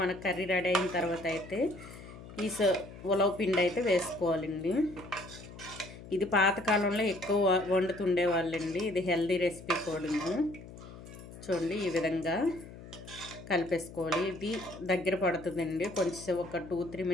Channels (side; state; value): left; noise; hum, 15 dB below the sound